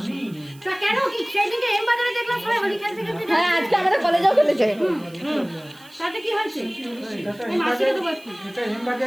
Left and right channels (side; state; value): right; noise; hiss, 25 dB below the sound